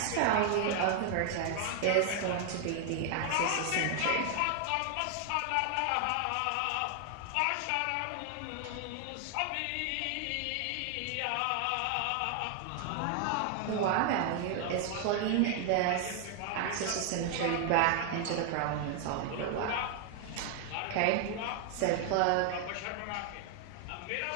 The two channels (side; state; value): both; different; correlation 0.00